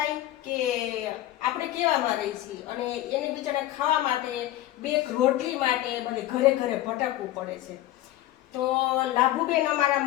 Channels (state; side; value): quieter; right; 14.8 dB